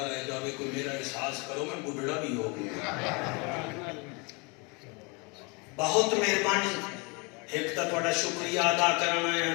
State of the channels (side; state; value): right; quieter; 30.2 dB